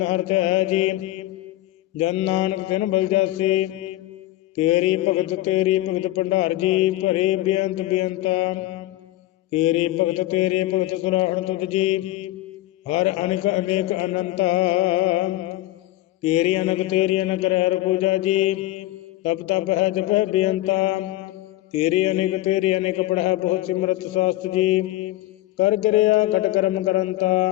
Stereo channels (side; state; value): right; quieter; 16.1 dB